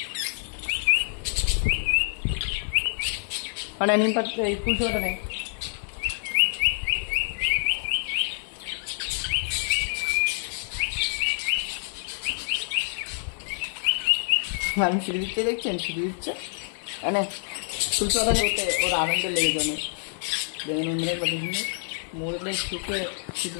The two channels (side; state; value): right; silent; 59 dB below the other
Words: মানে নিম পাতা, এই ফুলশোটা নেই। আমি সিঁড়ি দিচ্ছে, দেখছেন সিঁড়ি দিচ্ছে, এনে ফুলশোটা নিতে ওর আনন্দ লেগে যাবে। দেখেন অন্যরা কত সুন্দর মরলে শুকে সিঁড়ি